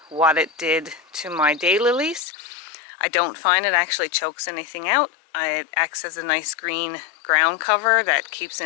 what it did to my daylilies. I don't find it actually chokes anything out. It acts as a nice green ground cover that keeps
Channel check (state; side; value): drops out; right; at 2.2 s